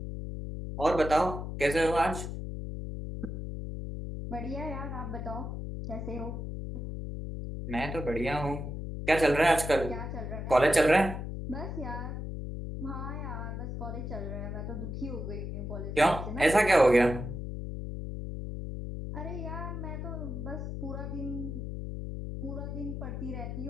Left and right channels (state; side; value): noise; left; hum, 6 dB below the sound